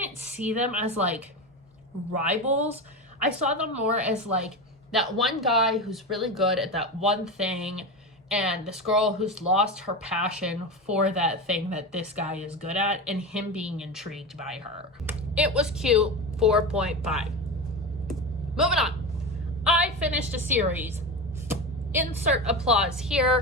see them as like rivals. I saw them more as like that one guy who's really good at that one thing, and this girl who's lost her passion for that thing that this guy is good at, and him being intrigued by her. It was cute, 4.5. Moving on. I finished a series. Insert applause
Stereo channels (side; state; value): both; normal; correlation 0.22